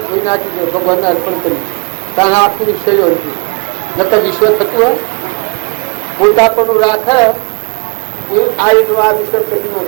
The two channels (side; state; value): left; quieter; 31.4 dB